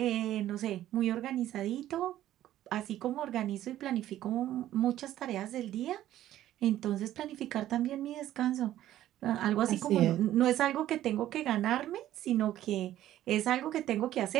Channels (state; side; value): quieter; left; 13.1 dB